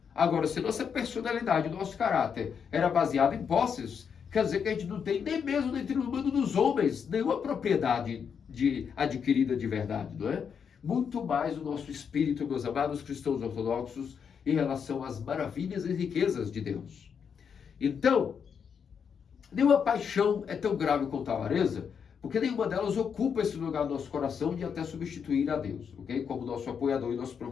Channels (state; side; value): quieter; right; 6.9 dB